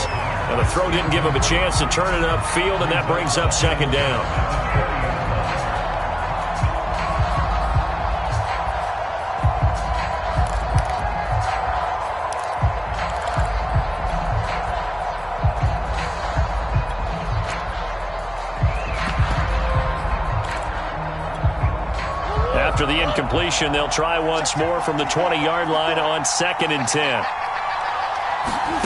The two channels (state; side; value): identical; both; correlation 1.00